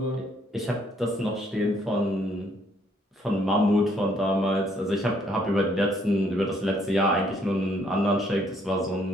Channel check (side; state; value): both; normal; correlation 0.67